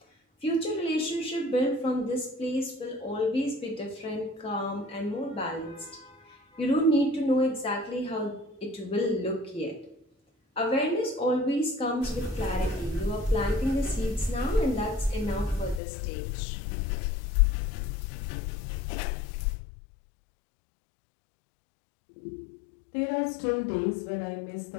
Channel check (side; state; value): right; drops out; at 15.8 s